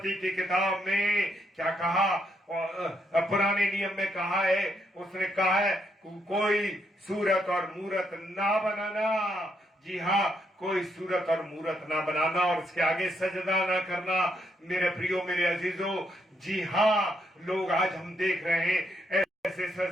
की किताब में क्या कहा, पुराने नियम में कहा है, उसने कहा है कोई सूरत और मूरत ना बनाना। जी हाँ, कोई सूरत और मूरत ना बनाना और उसके आगे सजदा ना करना मेरे प्रियो, मेरे अजीजों। जी हाँ, लोग आज हम देख रहे हैं ऐसे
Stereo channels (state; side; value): normal; both; correlation 0.77